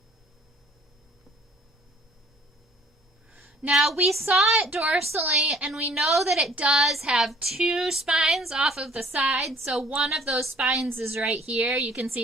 Now, we saw it dorsally, and we know that it does have 2 spines off of the side, so one of those spines is right here. You can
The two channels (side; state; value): both; normal; correlation 0.56